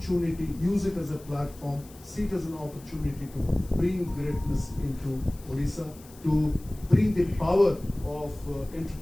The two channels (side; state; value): left; noise; hiss, 22 dB below the sound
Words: use it as a platform, see it as an opportunity to bring greatness into Odisha, to bring the power of